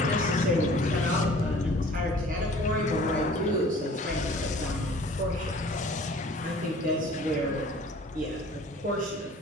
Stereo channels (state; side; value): normal; both; correlation 0.50